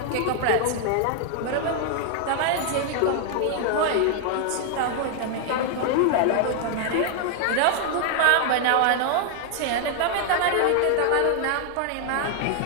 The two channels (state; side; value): different; both; correlation 0.00